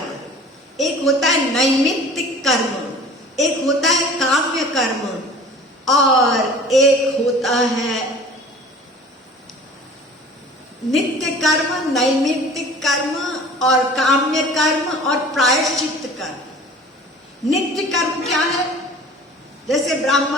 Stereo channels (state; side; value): normal; both; correlation 0.45